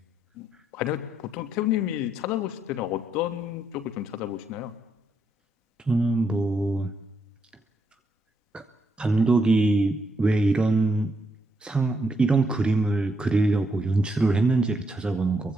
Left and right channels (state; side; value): normal; both; correlation 0.77